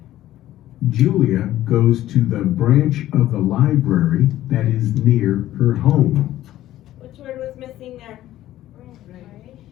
Julia goes to the branch of the library that is near her home. Which word was missing there?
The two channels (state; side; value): quieter; right; 13.9 dB